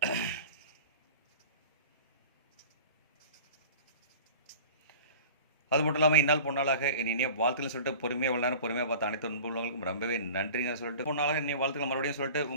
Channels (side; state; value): both; inverted; correlation -0.40